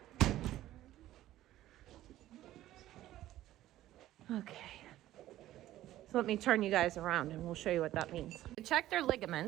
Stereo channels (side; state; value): left; quieter; 14.3 dB